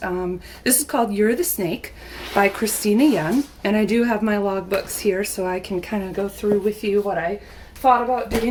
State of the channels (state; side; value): identical; both; correlation 1.00